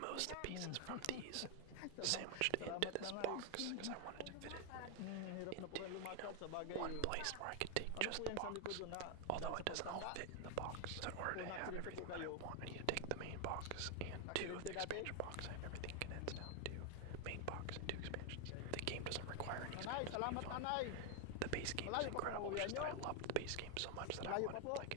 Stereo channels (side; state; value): both; different; correlation 0.01